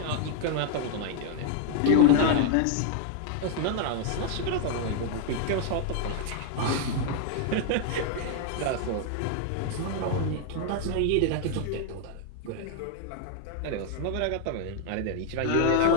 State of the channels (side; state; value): both; different; correlation 0.00